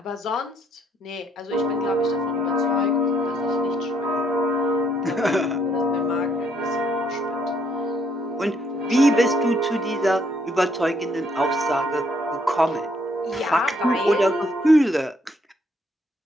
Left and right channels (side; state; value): both; normal; correlation 0.69